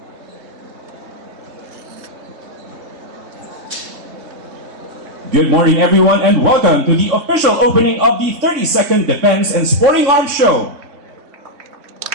Good morning, everyone, and welcome to the official opening of the 32nd Defense and Sporting Arms Show.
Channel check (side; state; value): left; late; 3.6 ms